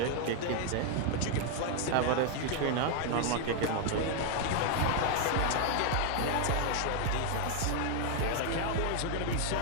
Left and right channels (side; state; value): both; different; correlation 0.00